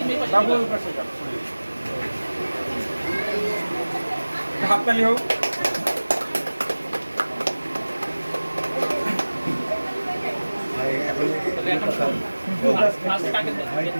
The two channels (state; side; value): inverted; both; correlation -1.00